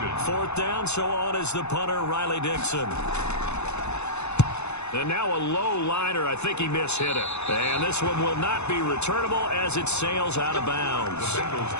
4th down, so on is the punter, Riley Dixon. And now a low liner. I think he mishit it. And this one will not be returnable as it sails out of bounds. The Bengals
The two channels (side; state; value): right; late; 0.81 ms